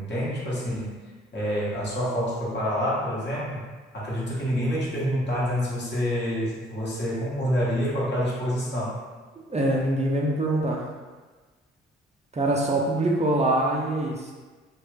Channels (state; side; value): normal; both; correlation 0.57